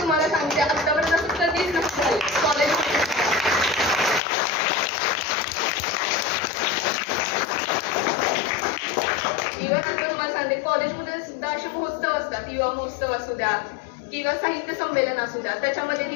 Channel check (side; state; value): right; drops out; at 4.2 s